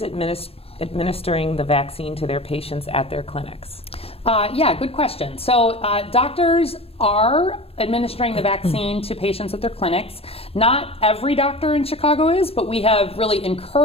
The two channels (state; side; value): late; right; 0.28 ms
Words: administering the vaccine to their patients at their clinics? Yeah, good question. So doctors are administering the vaccine to patients at their clinics. Not every doctor in Chicago is, but we have really